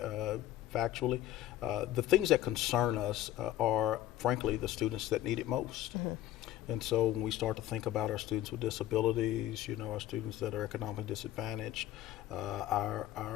factually. The things that concern us are, frankly, the students that need it most. And so when we start to think about our students with disabilities, you know, our students that are economically disadvantaged, our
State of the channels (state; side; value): quieter; right; 13.7 dB